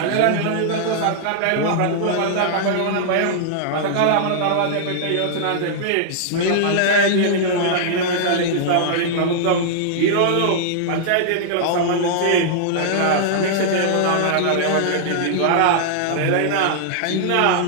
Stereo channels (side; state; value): both; different; correlation -0.01